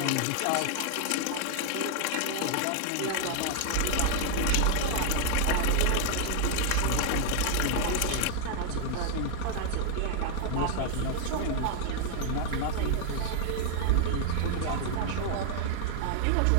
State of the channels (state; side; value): different; both; correlation 0.00